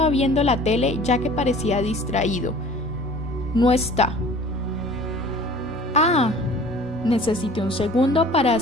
viendo la tele ya que parecía distraído. No está. Necesité un segundo para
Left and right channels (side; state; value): both; normal; correlation 0.46